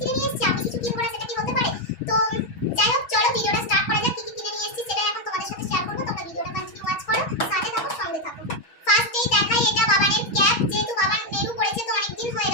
নিয়ে এসেছি, আমি কিছু কিনবো না সেটা কি হতে পারে? তো যাই হোক চলো ভিডিওটা স্টার্ট করা যাক। কি কি কিনে নিয়ে এসেছি সেটা এখন তোমাদের সাথে শেয়ার করবো, তোমরা ভিডিওটা কন্টিনিউ ওয়াচ করো, সাথে থাকো, সঙ্গে থাকো। ফার্স্টেই দেখাই এটা বাবানের ক্যাপ, যেহেতু বাবার নেরু পড়েছে তো অনেক দিন হয়ে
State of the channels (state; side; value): late; right; 6.2 ms